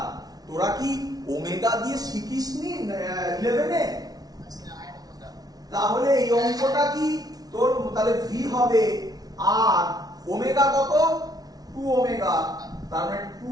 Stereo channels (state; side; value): late; left; 0.19 ms